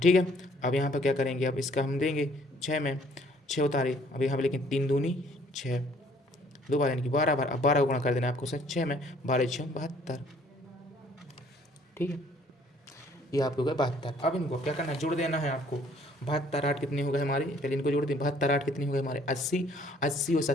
है, अब यहाँ पर क्या करेंगे, अब इसका हम देंगे 6 में 6 उतारे, अब यहाँ पर लेकिन 3 दूनी 6 2 बार, यानी कि 12 बार। अब 12 गुणा कर देना आपको सर 6 में, 12 6 72। ठीक है, ये आपको हो गया 72। अब इनको क्या करना है, जोड़ देना है आपको। 72 8 कितने हो गए हमारे, पहले इनको जोड़ दें। 72 8 कितने हो गए हमारे 80, 80 और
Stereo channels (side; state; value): both; normal; correlation 0.60